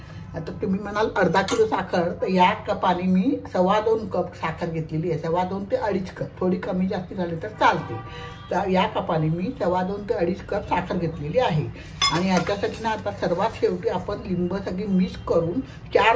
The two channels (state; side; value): identical; both; correlation 1.00